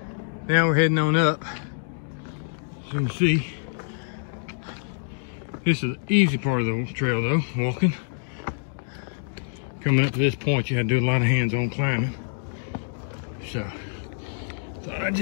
Now we're heading on up. As you can see, this is the easy part of the trail though, walking. Coming up to this point, you had to do a lot of hands-on climbing. So, thought I'd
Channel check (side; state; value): right; silent; digital silence